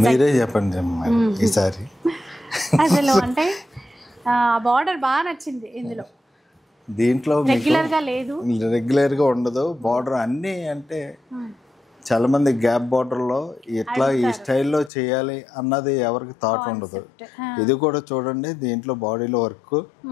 మీరే చెప్పండి ఈసారి. అసలు అంటే బార్డర్ బాగా నచ్చింది ఇందులో. దీంట్లో రెగ్యులర్గా ఉండదు బార్డర్ అన్నీ. అంటే చాలా మంది గ్యాప్ బార్డర్లో ఇట్లా ఈ స్టైల్లో చేయాలి అన్నది ఎవరికి థాట్ ఉండదు. ఇది కూడా చూడండి, దీంట్లో బాడీలో వర్క్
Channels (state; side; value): drops out; right; at 14.9 s